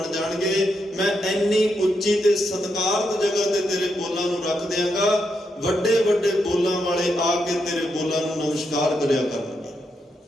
ਜਾਣਗੇ। ਮੈਂ ਇੰਨੀ ਉੱਚੀ ਤੇ ਸਤਿਕਾਰਤ ਜਗ੍ਹਾ ਤੇ ਤੇਰੇ ਬੋਲਾਂ ਨੂੰ ਰੱਖ ਦਿਆਂਗਾ, ਵੱਡੇ ਵੱਡੇ ਬੋਲਾਂ ਵਾਲੇ ਆ ਕੇ ਤੇਰੇ ਬੋਲਾਂ ਨੂੰ ਨਮਸਕਾਰ ਕਰਿਆ ਕਰਨਗੇ।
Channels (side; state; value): both; normal; correlation 0.82